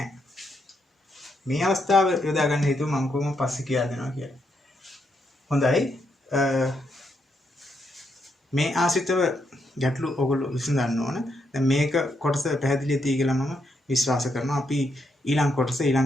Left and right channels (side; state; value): both; normal; correlation 0.79